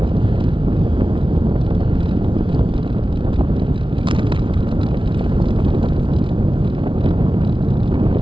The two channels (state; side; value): late; left; 0.25 ms